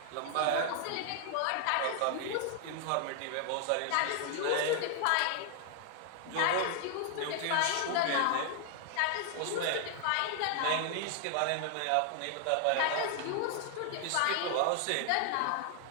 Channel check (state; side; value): different; both; correlation 0.00